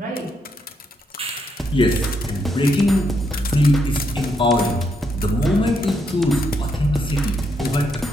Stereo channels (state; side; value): normal; both; correlation 0.77